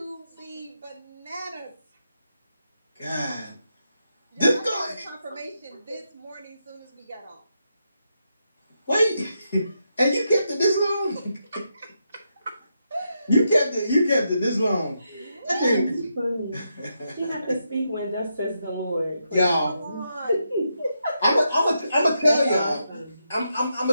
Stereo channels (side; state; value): both; inverted; correlation -0.83